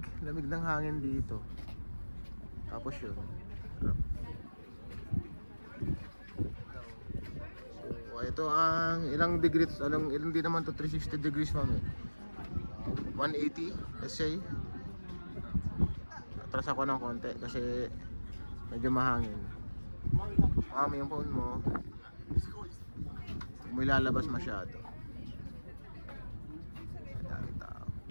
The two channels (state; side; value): inverted; both; correlation -1.00